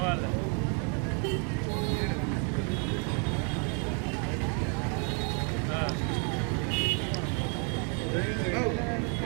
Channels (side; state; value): left; quieter; 38.8 dB